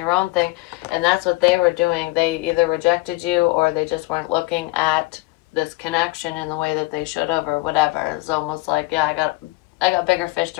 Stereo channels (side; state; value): right; quieter; 22.1 dB